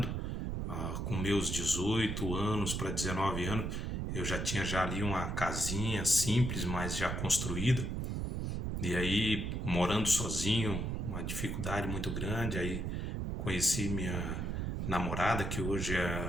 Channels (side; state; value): right; noise; rumble, 2 dB below the sound